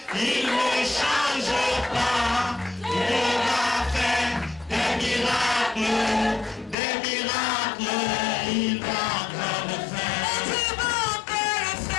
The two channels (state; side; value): drops out; right; at 6.8 s